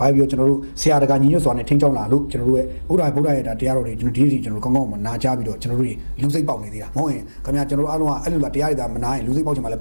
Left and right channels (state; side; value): inverted; both; correlation -1.00